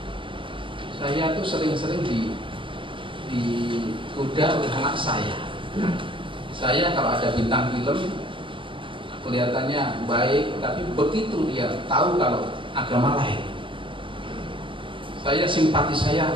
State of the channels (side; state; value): left; late; 0.25 ms